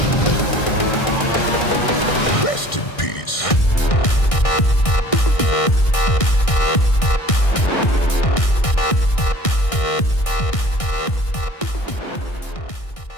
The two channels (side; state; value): right; late; 1.6 ms